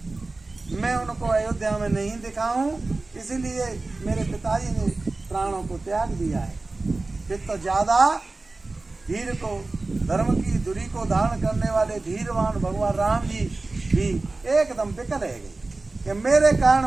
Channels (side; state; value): left; quieter; 3.3 dB